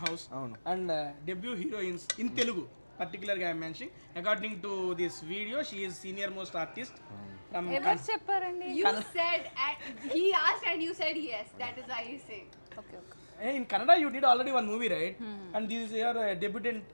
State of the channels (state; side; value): inverted; both; correlation -1.00